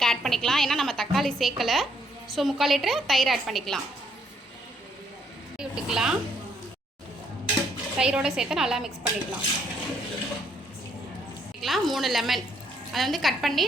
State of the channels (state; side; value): normal; both; correlation 0.71